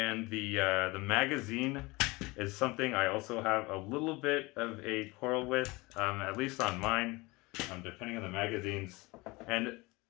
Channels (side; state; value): right; quieter; 23.7 dB